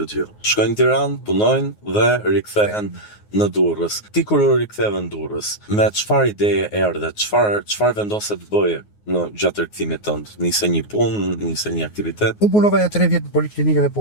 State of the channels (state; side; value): late; right; 9.5 ms